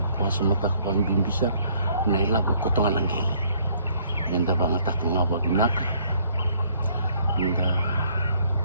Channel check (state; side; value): inverted; both; correlation -0.63